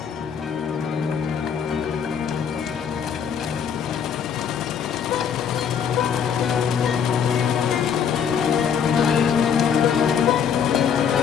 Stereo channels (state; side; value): quieter; right; 7.5 dB